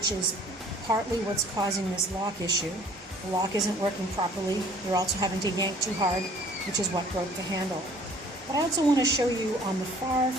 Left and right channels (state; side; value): normal; both; correlation 0.54